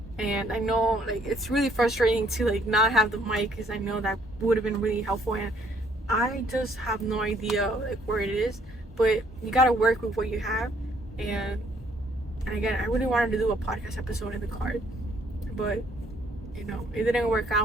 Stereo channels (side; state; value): both; normal; correlation 0.65